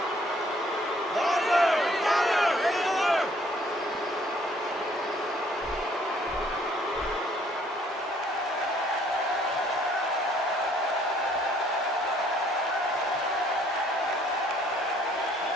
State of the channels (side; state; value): both; normal; correlation 0.62